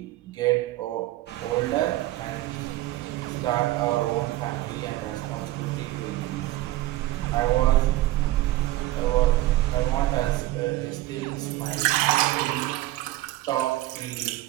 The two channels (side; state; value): left; quieter; 16.4 dB